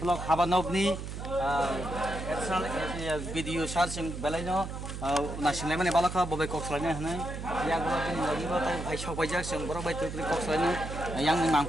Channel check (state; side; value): noise; right; hum, 7 dB below the sound